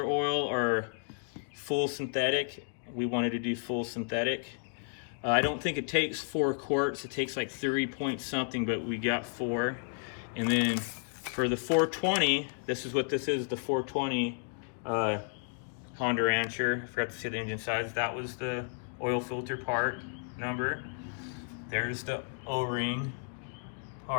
oil or full synthetic. We wanted to do full synthetic. I don't think it takes 4 quarts. It takes like 3 point something, but we got 4. And then for the 420, this is what this is, the 420 Honda Rancher. I forgot to say the engine size. That was the oil filter part number. There's the O-ring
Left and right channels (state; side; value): silent; right; 56 dB below the other